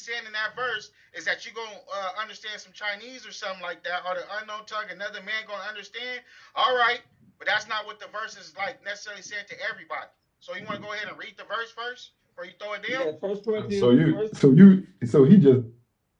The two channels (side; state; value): both; identical; correlation 1.00